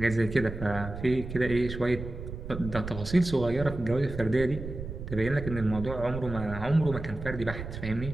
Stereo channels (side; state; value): right; noise; rumble, 9 dB below the sound